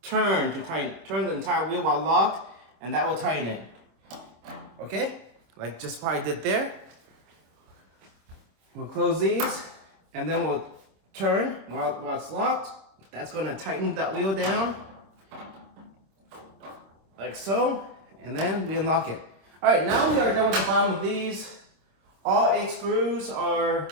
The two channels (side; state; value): left; late; 26 ms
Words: turn the entire wheel while locked, and that will tighten it. Okay? Like just what I did there. We'll close these, and then we'll turn while it's locked. That's gonna tighten that wheel down, like so, and then we unlock it. All right, now we are done with the bottom of these. All 8 screws are